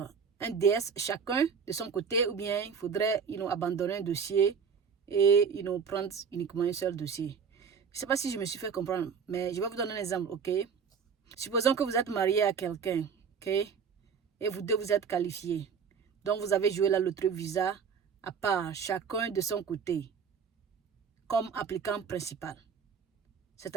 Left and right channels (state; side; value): quieter; left; 6.4 dB